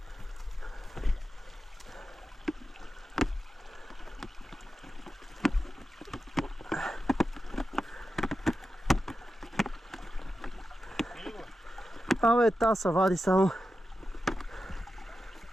Абе, та се вади само.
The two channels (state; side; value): normal; both; correlation 0.91